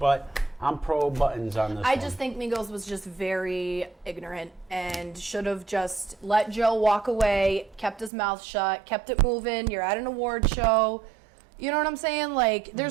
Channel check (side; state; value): left; drops out; at 8.1 s